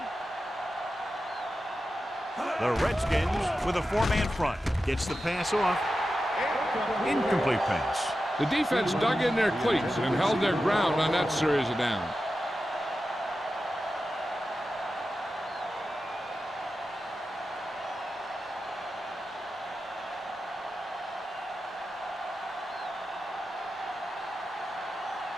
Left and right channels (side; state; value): both; normal; correlation 0.92